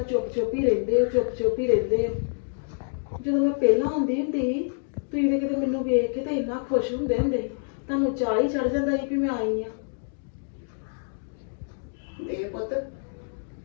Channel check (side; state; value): right; silent; digital silence